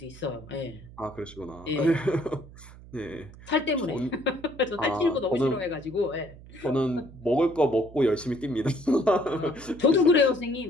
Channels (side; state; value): right; noise; hum, 19 dB below the sound